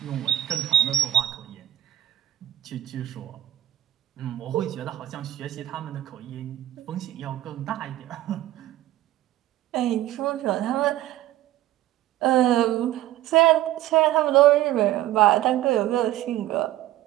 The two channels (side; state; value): left; quieter; 13.8 dB